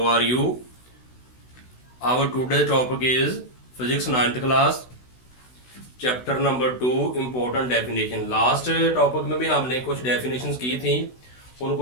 are you? Our today's topic is physics 9th class, chapter number 2, important definition. Last topic में भी हमने कुछ definitions की थी,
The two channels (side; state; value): right; late; 16 ms